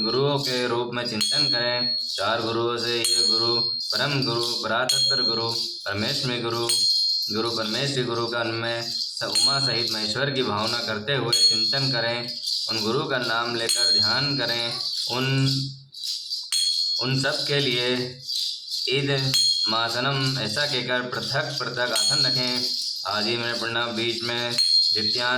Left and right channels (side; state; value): both; identical; correlation 1.00